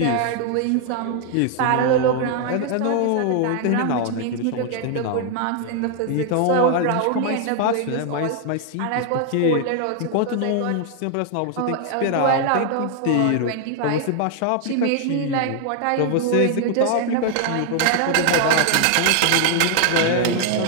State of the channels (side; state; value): both; different; correlation 0.00